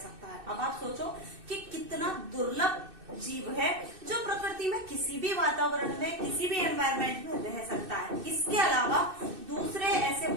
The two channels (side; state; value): left; late; 2.6 ms